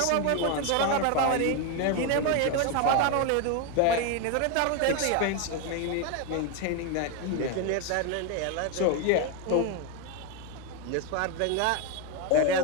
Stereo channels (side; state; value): both; different; correlation 0.02